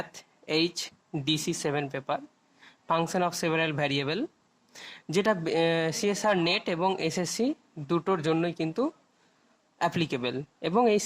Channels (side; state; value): both; identical; correlation 1.00